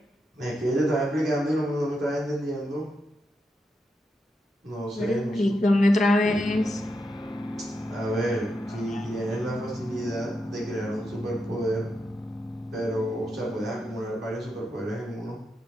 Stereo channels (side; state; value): both; normal; correlation 0.85